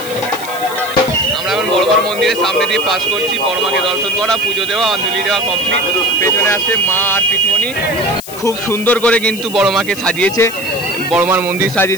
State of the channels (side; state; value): left; noise; hiss, 14 dB below the sound